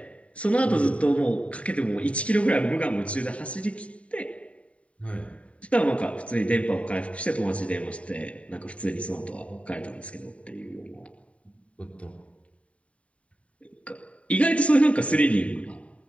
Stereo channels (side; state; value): right; late; 0.065 ms